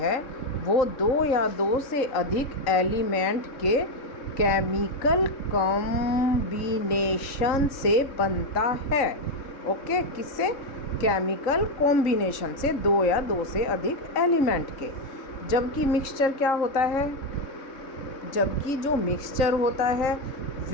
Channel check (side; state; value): right; late; 3.6 ms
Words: वो 2 या 2 से अधिक एलिमेंट के केमिकल कॉम्बिनेशन से बनता है। ओके, किससे? केमिकल कॉम्बिनेशन से, 2 या 2 से अधिक एलिमेंट के। जबकि मिक्सचर क्या होता है? जबकि जो मिक्सचर होता है